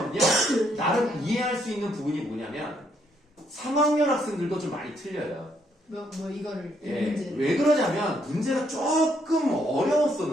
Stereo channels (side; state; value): both; normal; correlation 0.72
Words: 나름 이해할 수 있는 부분이 뭐냐면 3학년 학생들도 좀 많이 틀려요. 이거를 예, 문제. 왜 그러냐면 문제가 조금